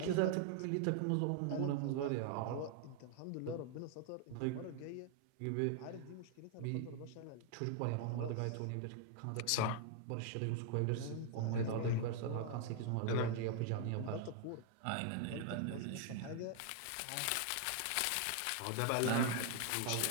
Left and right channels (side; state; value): both; different; correlation 0.00